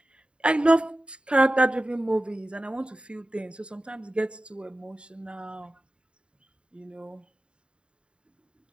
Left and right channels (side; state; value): left; late; 0.053 ms